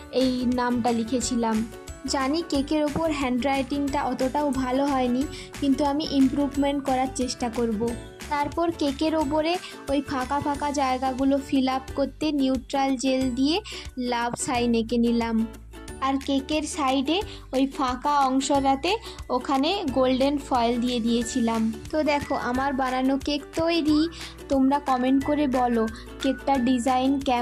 এই নামটা লিখেছিলাম। জানি কেকের ওপর হ্যান্ডরাইটিংটা অতটাও ভালো হয়নি, কিন্তু আমি ইমপ্রুভমেন্ট করার চেষ্টা করব। তারপর কেকের ওপরে ওই ফাঁকা ফাঁকা জায়গাগুলো ফিল আপ করতে নিউট্রাল জেল দিয়ে লাভ সাইন এঁকে নিলাম। আর কেকের সাইডে ওই ফাঁকা অংশটাতে ওখানে গোল্ডেন ফয়েল দিয়ে দিয়েছিলাম। তো দেখো আমার বানানো কেক তৈরি। তোমরা কমেন্ট করে বলো কেকটার ডিজাইন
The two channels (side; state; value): both; identical; correlation 1.00